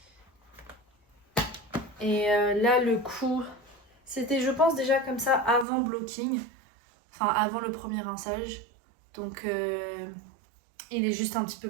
Et là, le coup, c'était, je pense, déjà comme ça avant blocking. Enfin, avant le premier rinçage. Donc, il est juste un petit peu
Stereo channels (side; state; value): left; drops out; at 5.7 s